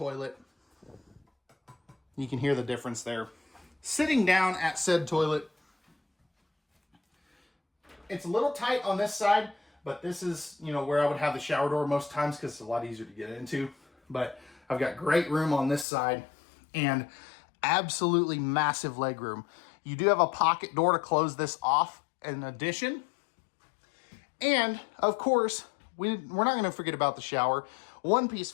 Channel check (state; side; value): drops out; right; at 15.9 s